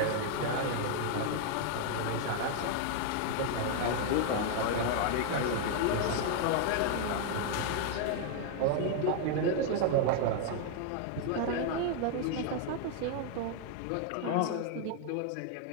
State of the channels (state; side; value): different; both; correlation 0.00